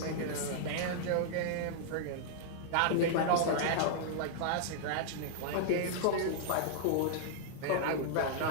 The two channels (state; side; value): different; both; correlation -0.01